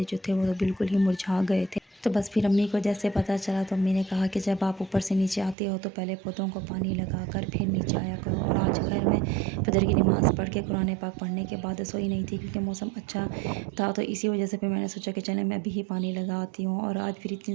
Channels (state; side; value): drops out; left; at 5.6 s